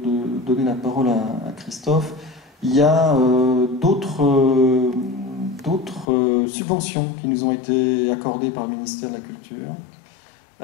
donner la parole à Christophe. Il y a d'autres subventions qui nous ont été accordées par le ministère de la Culture,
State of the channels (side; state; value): right; drops out; at 6.1 s